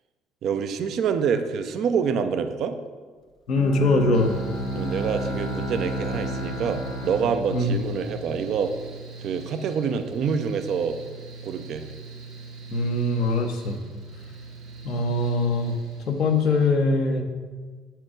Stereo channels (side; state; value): both; normal; correlation 0.43